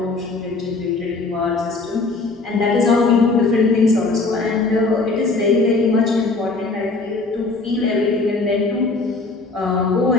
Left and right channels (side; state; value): right; quieter; 3.6 dB